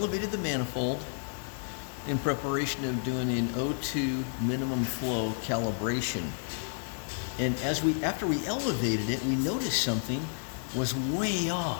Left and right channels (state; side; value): silent; right; digital silence